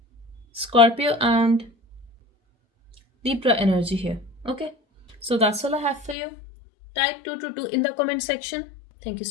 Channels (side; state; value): right; drops out; at 6.2 s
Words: Scorpio and Libra energy here. Okay, so that's all I have for you. Type 222 in the comment section. Thank you